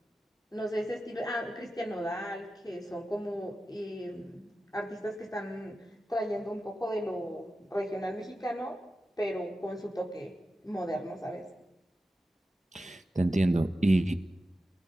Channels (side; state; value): both; normal; correlation 0.92